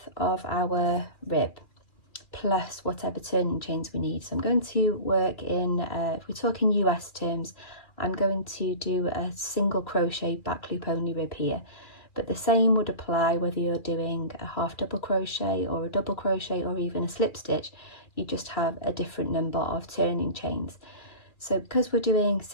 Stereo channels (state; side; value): late; right; 2.4 ms